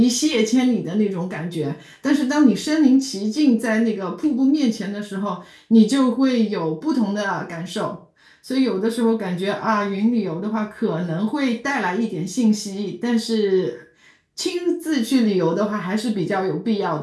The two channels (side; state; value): both; identical; correlation 1.00